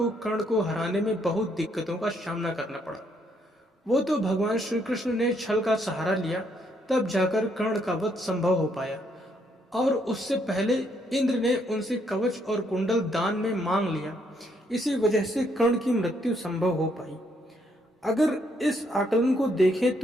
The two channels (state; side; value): normal; both; correlation 0.72